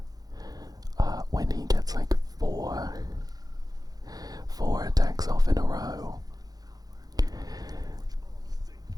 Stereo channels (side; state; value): left; late; 0.19 ms